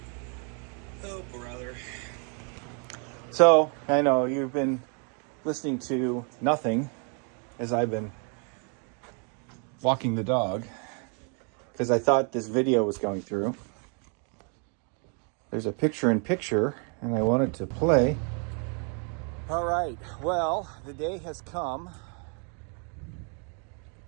Oh, brother. So, I know you've been listening to nothing as I've been walking the dog because I thought this video was going through. There's a picture-in-picture, and I wanted to play. All right. Well, the day has come.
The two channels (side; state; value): left; quieter; 38.8 dB